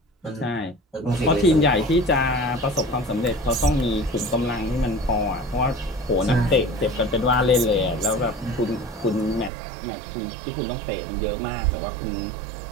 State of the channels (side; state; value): left; drops out; at 9.5 s